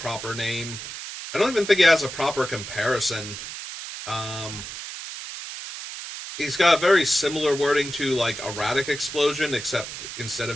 name. I don't even think he has a proper comparison. Um, he's got very similar wording to like Erratic Explosion, except instead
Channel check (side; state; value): right; noise; hiss, 9 dB below the sound